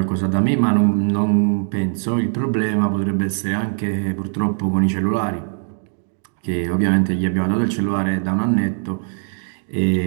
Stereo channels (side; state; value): left; silent; digital silence